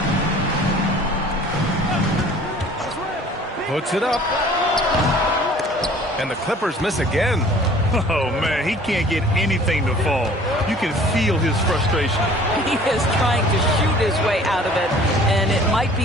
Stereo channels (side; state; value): both; normal; correlation 0.50